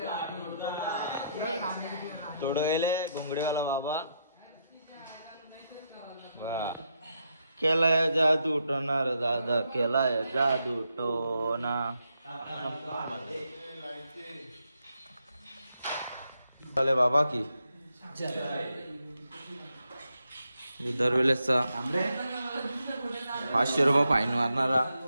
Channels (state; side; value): inverted; both; correlation -0.80